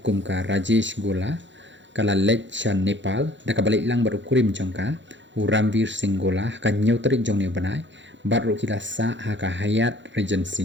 kum ka Rajesh Gola kala lech shan Nepal da kabalik lang baru kurim jongka Ramvir Singh Gola ka Hynñiewtrep jong ne banai baru kila sa haka hayat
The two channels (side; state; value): left; late; 0.54 ms